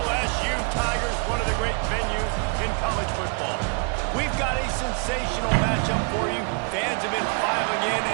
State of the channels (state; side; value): quieter; left; 37.4 dB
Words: Tigers, one of the great venues in college football. We've got a sensational matchup for you. Fans have been filing in